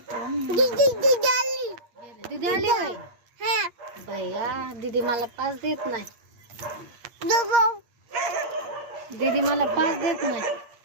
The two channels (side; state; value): left; late; 8.5 ms